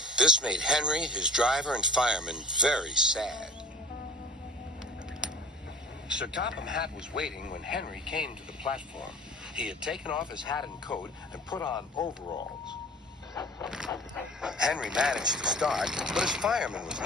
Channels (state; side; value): normal; both; correlation 0.43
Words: This made Henry, his driver, and fireman very sad. Sir Topham Hatt was waiting when Henry came to the platform. He had taken off his hat and coat and put on overalls. Henry managed to start, but his fireman was